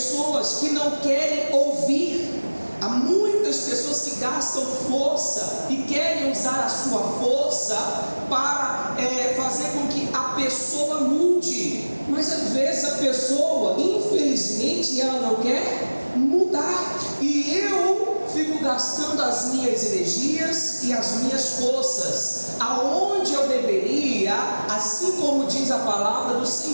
que não querem ouvir. Há muitas pessoas que gastam força e querem usar a sua força para fazer com que a pessoa mude. Mas às vezes a pessoa, infelizmente, ela não quer mudar. E eu fico gastando as minhas energias e as minhas forças aonde eu deveria, assim como diz a palavra do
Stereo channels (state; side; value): inverted; both; correlation -1.00